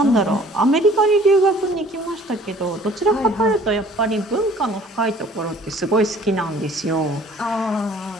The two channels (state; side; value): normal; both; correlation 0.53